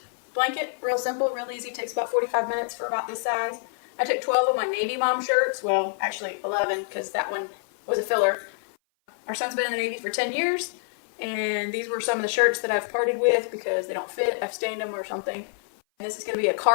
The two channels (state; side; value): silent; right; 57 dB below the other